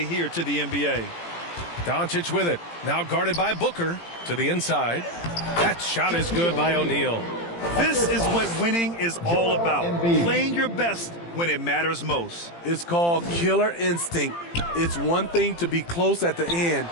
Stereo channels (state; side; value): late; right; 18 ms